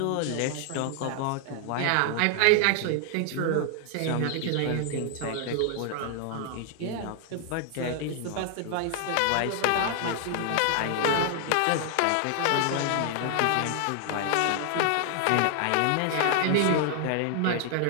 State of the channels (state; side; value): different; both; correlation 0.00